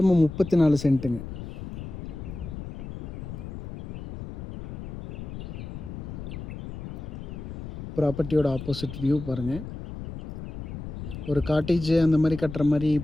34 சென்ட்டுங்க. ப்ராப்பர்ட்டியோட ஆப்போசிட் வியூ பாருங்கள். ஒரு காட்டேஜ் அந்த மாதிரி கட்டுற மாதிரி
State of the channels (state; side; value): noise; left; rumble, 9 dB below the sound